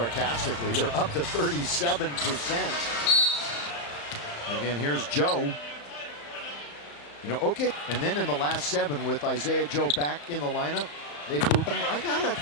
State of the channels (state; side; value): late; right; 35 ms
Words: they're up to 37%. Again, here's Joe. You know, okay. And then in the last 7 with Isaiah Joe back in the lineup, they've moved. I got it